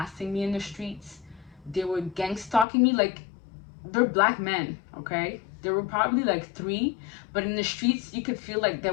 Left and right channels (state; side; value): drops out; right; at 2.7 s